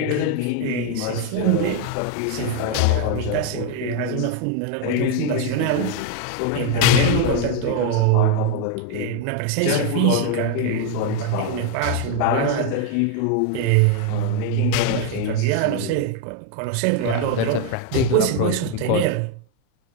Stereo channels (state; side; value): different; both; correlation 0.01